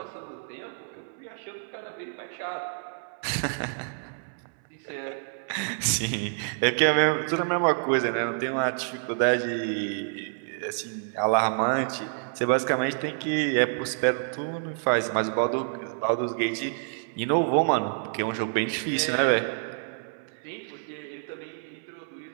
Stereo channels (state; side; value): silent; left; 59 dB below the other